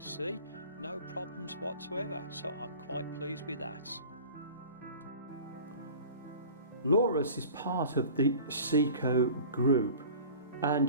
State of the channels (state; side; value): inverted; both; correlation -0.41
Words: no problems whatsoever, so I'm quite pleased with that. Lorus is part of the Seiko group,